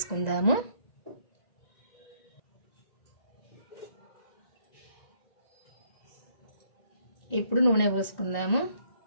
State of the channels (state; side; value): late; right; 1.8 ms